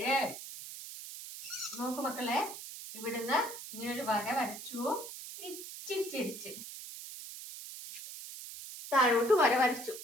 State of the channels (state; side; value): noise; right; hiss, 11 dB below the sound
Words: നോക്കു മക്കളെ, ഇവിടുന്ന് ഇങ്ങനെ ഒരു വര വരച്ചു, ഇച്ചിരി ചിരിച്ച് താഴോട്ട് വര വരച്ചു.